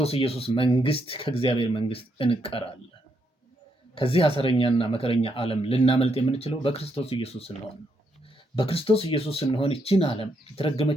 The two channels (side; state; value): both; normal; correlation 0.78